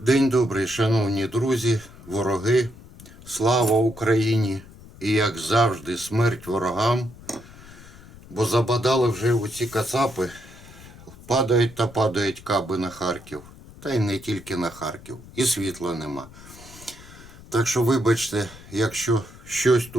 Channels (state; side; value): noise; left; rumble, 19 dB below the sound